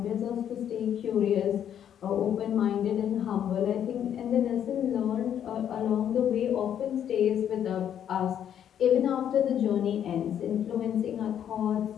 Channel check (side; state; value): right; quieter; 9.6 dB